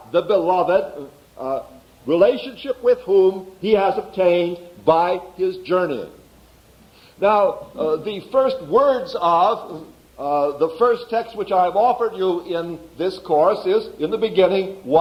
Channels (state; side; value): identical; both; correlation 1.00